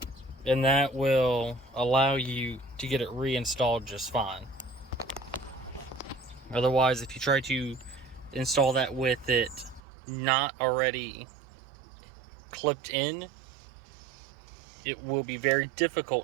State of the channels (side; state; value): left; drops out; at 9.8 s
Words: and that will allow you to get it reinstalled just fine. Otherwise, if you try to install that with it not already clipped in, it will be very